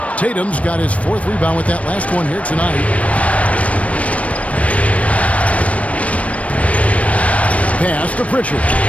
Tatum's got his 4th rebound with that last one here tonight. Pass to Pritchard.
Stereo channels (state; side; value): late; right; 0.065 ms